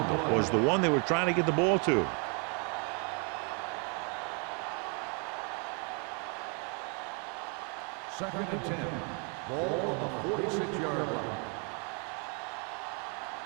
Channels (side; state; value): left; quieter; 36.7 dB